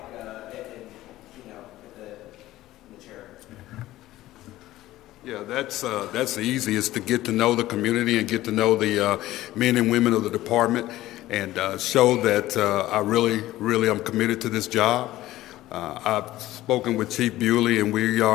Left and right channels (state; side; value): quieter; right; 15.7 dB